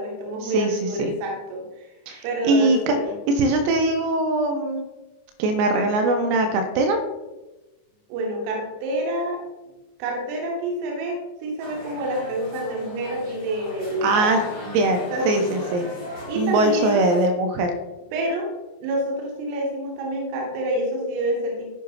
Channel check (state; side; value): late; left; 28 ms